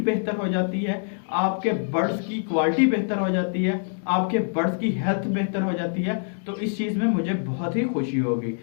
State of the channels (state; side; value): silent; right; digital silence